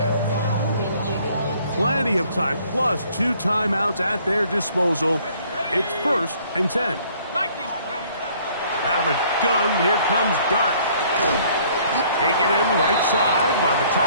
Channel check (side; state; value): both; inverted; correlation -0.59